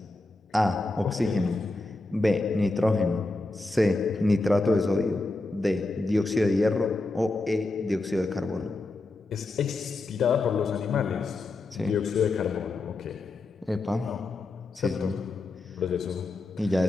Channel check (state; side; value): quieter; right; 3.1 dB